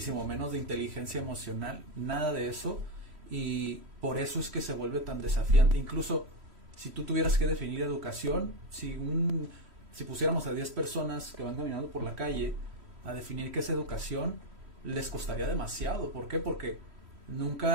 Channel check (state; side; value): late; left; 3.1 ms